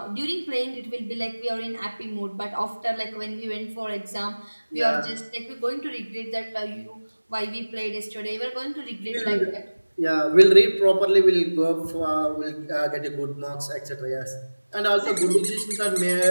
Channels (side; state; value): both; inverted; correlation -1.00